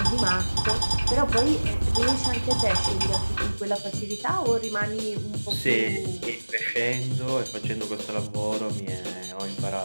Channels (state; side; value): inverted; both; correlation -1.00